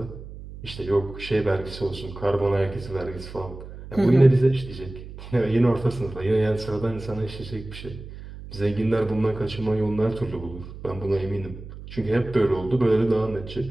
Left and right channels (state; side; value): noise; right; hum, 13 dB below the sound